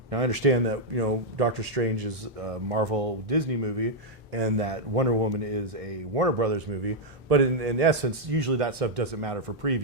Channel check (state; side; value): normal; both; correlation -0.03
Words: Now I understand that Doctor Strange is a Marvel Disney movie, and that Wonder Woman is a Warner Brothers movie. But in essence, usually that stuff doesn't matter for